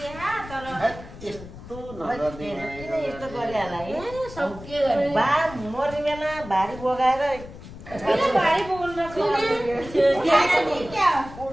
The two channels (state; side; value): noise; left; rumble, 15 dB below the sound